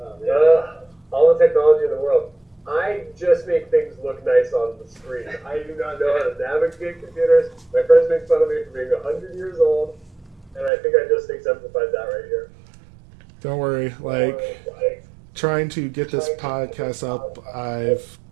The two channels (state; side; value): drops out; left; at 10.7 s